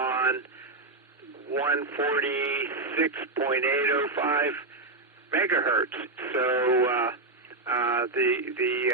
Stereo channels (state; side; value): quieter; left; 3.2 dB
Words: 146.805 megahertz. So